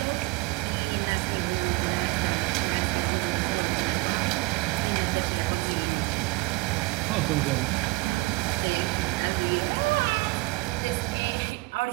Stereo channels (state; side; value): quieter; left; 24.0 dB